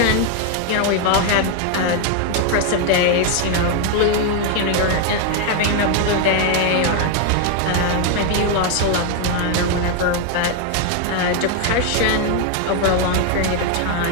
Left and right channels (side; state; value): both; different; correlation 0.01